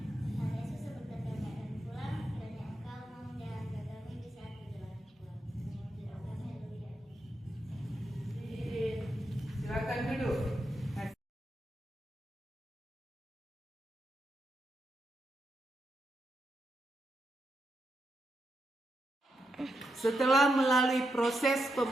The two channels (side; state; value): both; normal; correlation 0.84